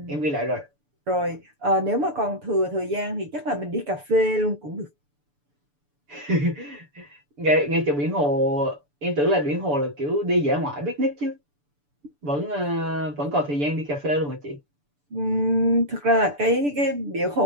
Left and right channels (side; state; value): left; late; 6.9 ms